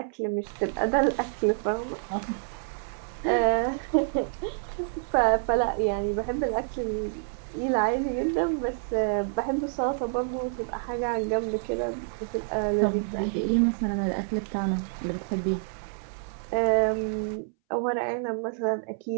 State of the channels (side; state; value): left; silent; 59 dB below the other